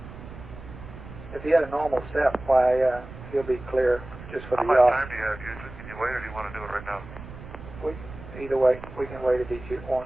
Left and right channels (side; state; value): right; noise; rumble, 14 dB below the sound